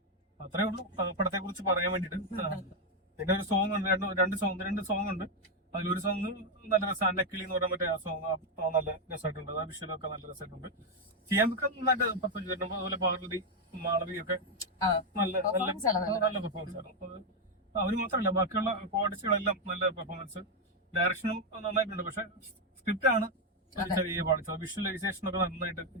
അത്രേ ഉള്ളൂ പടത്തെ കുറിച്ച് പറയാൻ വേണ്ടിട്ട്. പിന്നെ ഒരു സോങ് ഉണ്ട്, രണ്ട് സോങ് ഉണ്ട്. അതിലൊരു സോങ് നല്ല രസം, അന്നക്കിളി എന്ന് പറഞ്ഞ മറ്റേ ആ സോങ് നല്ല രസമായിട്ടുണ്ട്. ആ വിഷ്വലൊക്കെ നല്ല രസമായിട്ടുണ്ട്. ചെയ്യാനൊക്കെ നന്നായിട്ട് പെർഫോം ചെയ്തിട്ടുണ്ട്. അതുപോലെ പാർവതി, മാളവി ഒക്കെ നല്ല പെർഫോമൻസ് ആയിരുന്നു. അവര് മാത്രമല്ല, ബാക്കിയുള്ള കോർഡിസ്റ്റുകളെല്ലാം നല്ല പെർഫോമൻസ്. ഡയറക്ഷനും നന്നായിട്ടുണ്ട്. പക്ഷെ സ്ക്രിപ്റ്റ് ആണ് ചെറിയ പാടിച്ചത്. വിഷ്വലൈസേഷൻ ഒക്കെ നന്നായിട്ട്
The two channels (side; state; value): both; normal; correlation 0.03